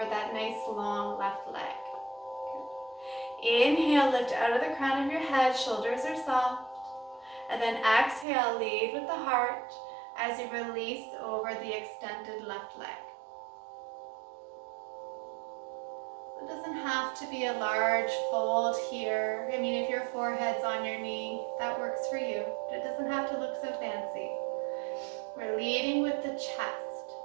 that nice long left leg. Good. Inhale, lift out of the crown of your head, shoulders are soft. And then exhale, lead with the heart as you release over the extended left leg. It doesn't have to be a large fold here. I mean, if your forehead's on your knee, that works for you. But it doesn't have to look so fancy. We're leading with the chest,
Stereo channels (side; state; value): left; drops out; at 8.2 s